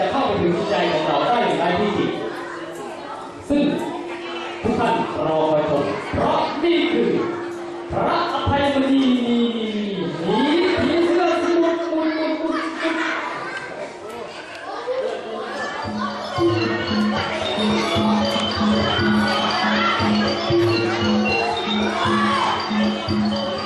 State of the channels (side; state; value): both; identical; correlation 1.00